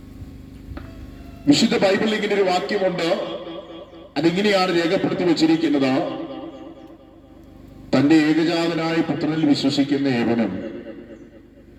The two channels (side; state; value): both; identical; correlation 1.00